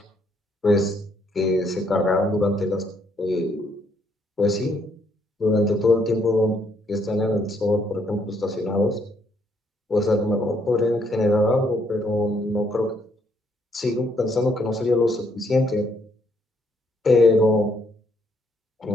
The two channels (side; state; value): both; normal; correlation 0.71